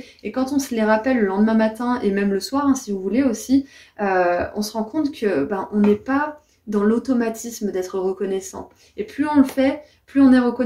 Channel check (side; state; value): both; identical; correlation 1.00